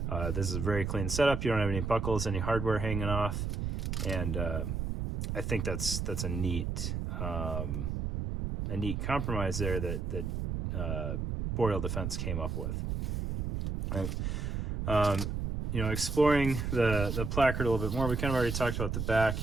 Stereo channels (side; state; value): right; noise; rumble, 2 dB below the sound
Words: This is a very clean setup. You don't have any buckles, any hardware hanging off, and I think that's a neat compromise there that Boreal Defense came up with. Right. Exploring the placard a little bit more, we kind of already talked about the back